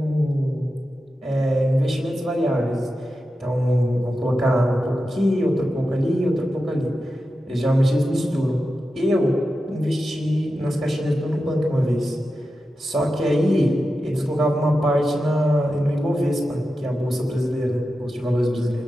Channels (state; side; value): normal; both; correlation 0.91